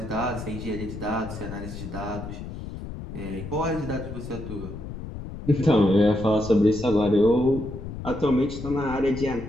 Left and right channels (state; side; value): noise; left; rumble, 9 dB below the sound